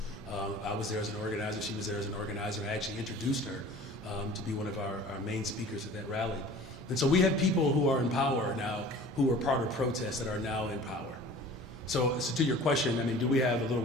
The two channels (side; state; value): both; normal; correlation 0.44